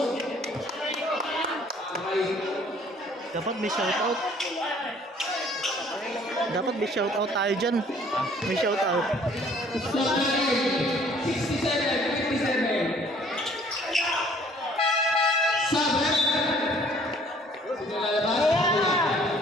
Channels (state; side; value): normal; both; correlation 0.57